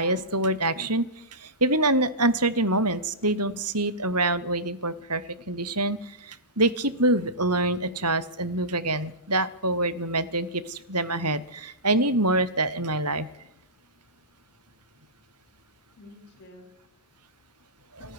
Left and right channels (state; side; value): normal; both; correlation -0.20